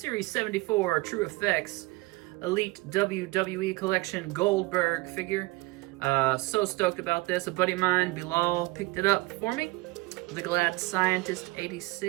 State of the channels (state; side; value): quieter; left; 22.6 dB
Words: 74 True Effects Elite WWE Collection Goldberg figure. So stoked about this. A buddy of mine, Bilal, picked it up for me. The Glad Scientist